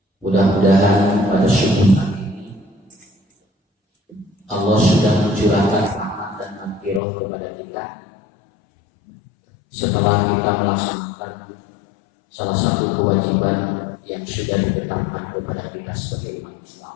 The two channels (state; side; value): drops out; right; at 7.0 s